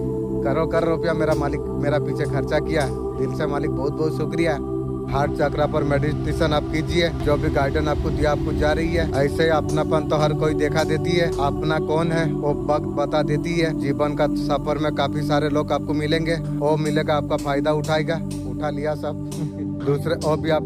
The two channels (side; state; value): both; identical; correlation 1.00